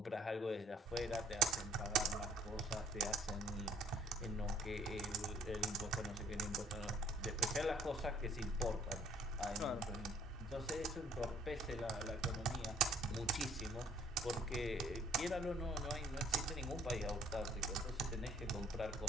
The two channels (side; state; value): both; normal; correlation 0.59